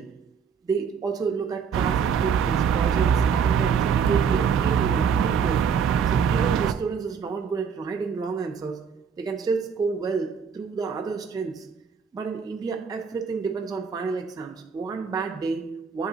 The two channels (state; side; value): quieter; left; 6.7 dB